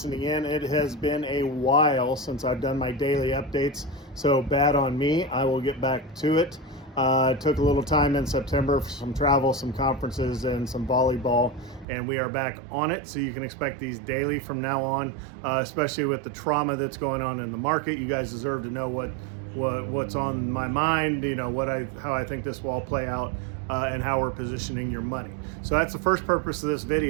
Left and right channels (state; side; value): drops out; left; at 11.9 s